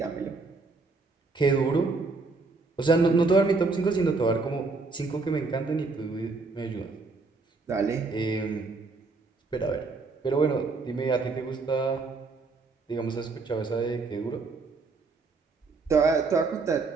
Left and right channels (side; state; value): left; quieter; 3.9 dB